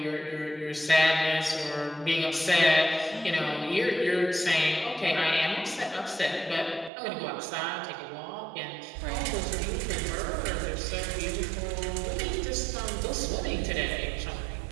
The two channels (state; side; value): drops out; left; at 6.9 s